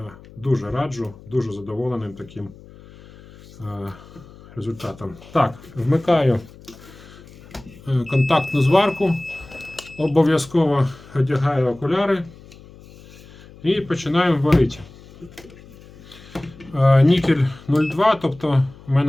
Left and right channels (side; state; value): left; noise; hum, 21 dB below the sound